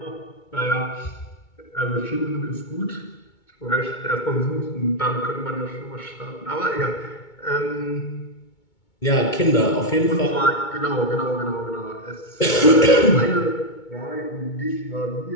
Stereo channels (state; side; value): late; right; 2.2 ms